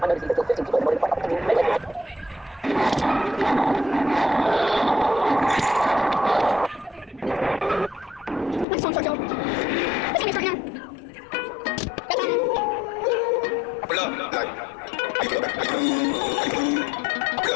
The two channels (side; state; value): right; drops out; at 8.7 s